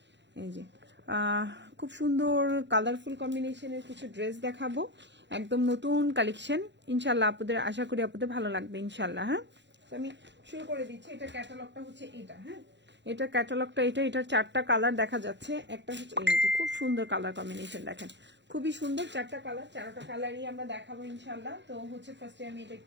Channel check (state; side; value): late; left; 0.52 ms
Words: এই যে খুব সুন্দর কালারফুল কম্বিনেশনের কিছু ড্রেস দেখাবো, একদম নতুন কালেকশন। ইনশাআল্লাহ আপনাদের আশা করি আপনাদের ভালো লাগবে ইনশাআল্লাহ। হ্যাঁ, আমি শুরু করে দিচ্ছি। এটা ক্যাটালগটা হচ্ছে এটা। হ্যাঁ, এটা ক্যাটালগটা এটার 4টা কালার দেখা যাচ্ছে। একটা হচ্ছে এই যে খুব সুন্দর কালার কম্বিনেশন, দেখেন খুবই সুন্দর 4টা কালার। 4টা কালারই আমরা দেখাবো ইনশাআল্লাহ। তো হচ্ছে ফার্স্টে আমি এটা